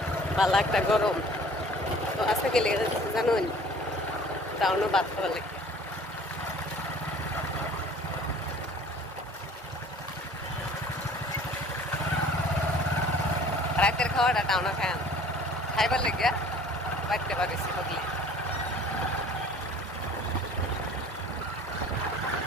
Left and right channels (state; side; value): normal; both; correlation 0.49